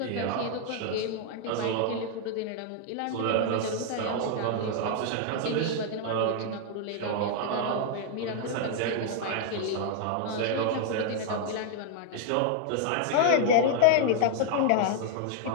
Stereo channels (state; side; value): different; both; correlation 0.00